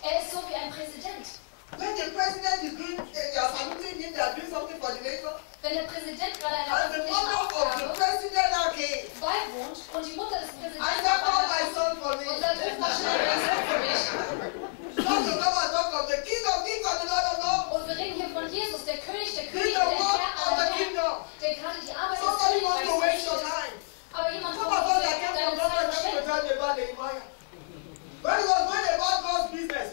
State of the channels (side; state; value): right; silent; 59 dB below the other